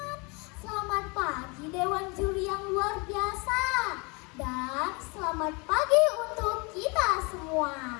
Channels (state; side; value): quieter; right; 29.5 dB